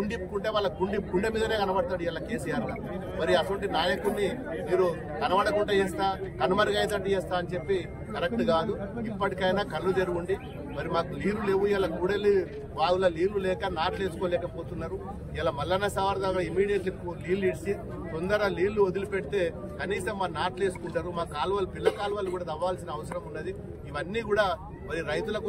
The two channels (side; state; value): both; identical; correlation 1.00